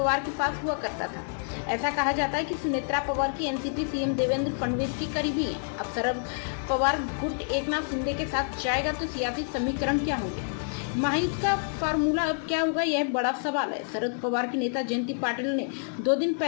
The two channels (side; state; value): right; silent; digital silence